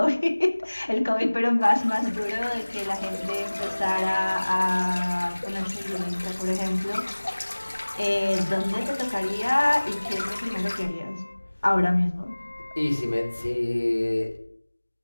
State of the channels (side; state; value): both; inverted; correlation -1.00